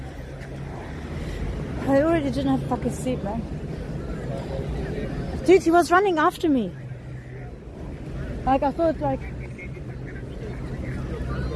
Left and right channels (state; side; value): identical; both; correlation 1.00